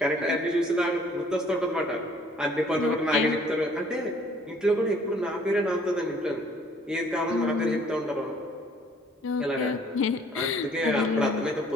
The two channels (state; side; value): normal; both; correlation 0.59